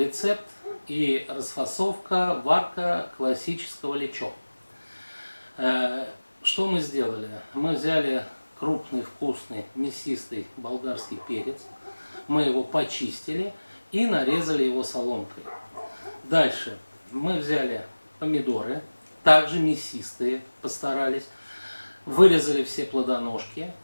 и расфасовка, варка классического лечо. Что мы сделали? Мы взяли крупный, вкусный, мясистый болгарский перец, мы его почистили и нарезали его соломкой. Дальше мы взяли помидоры, также мясистые, постарались, вырезали все плодоножки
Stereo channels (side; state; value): both; inverted; correlation -1.00